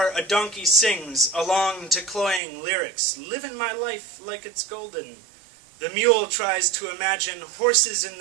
a donkey sings along to cloying lyrics, "Living my life like it's golden." The mule tries to imagine horses in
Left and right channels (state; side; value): drops out; left; at 2.4 s